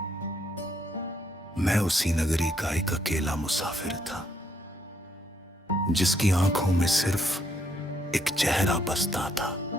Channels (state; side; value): normal; both; correlation 0.72